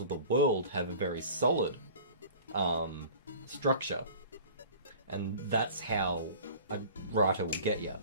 of the world have a very solid structure. And that's how a writer will get you.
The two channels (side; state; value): both; inverted; correlation -0.42